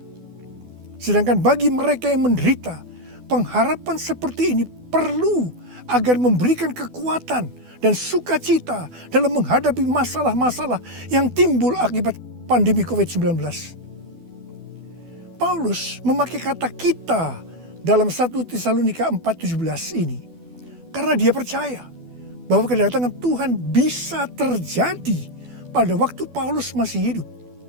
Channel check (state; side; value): late; left; 12 ms